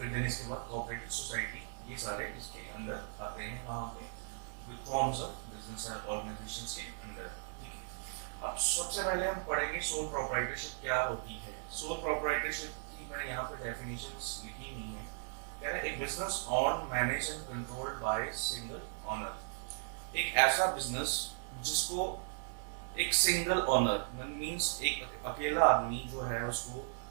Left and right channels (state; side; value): silent; left; digital silence